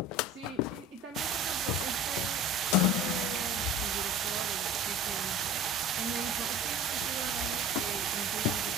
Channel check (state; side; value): normal; both; correlation 0.40